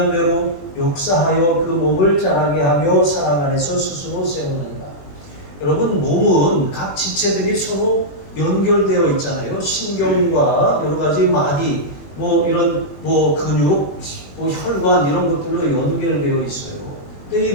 역사하여 그 몸을 자라게 하며 사랑 안에서 스스로 세우는가. 여러분, 몸은 각 지체들이 서로 연결되어 있잖아요. 신경과 여러 가지 마디, 이런 근육, 혈관 이런 것들로 연결되어 있어요. 근데 이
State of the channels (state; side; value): late; right; 21 ms